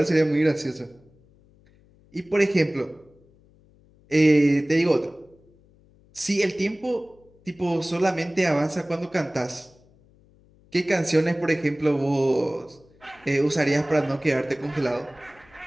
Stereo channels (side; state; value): left; noise; hum, 30 dB below the sound